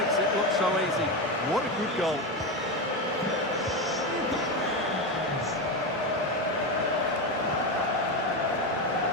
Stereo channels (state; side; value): normal; both; correlation 0.15